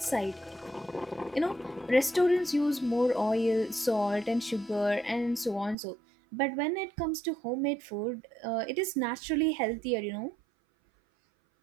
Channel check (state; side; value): drops out; left; at 5.8 s